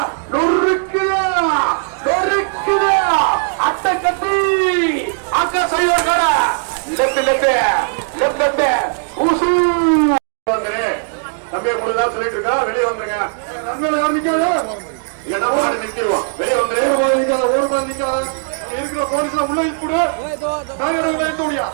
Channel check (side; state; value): left; silent; digital silence